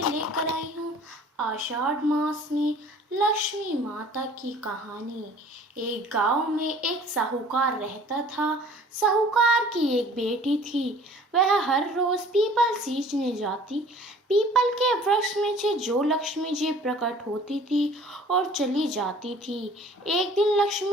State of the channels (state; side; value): normal; both; correlation 0.50